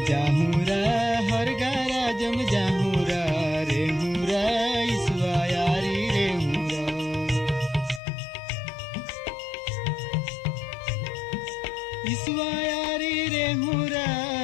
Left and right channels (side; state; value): right; drops out; at 8.0 s